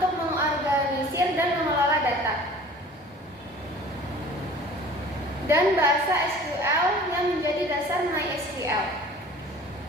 mengorganisir dan mengelola data. Dan bahasa SQL yang menjadi dasar MySQL.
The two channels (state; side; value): normal; both; correlation 0.46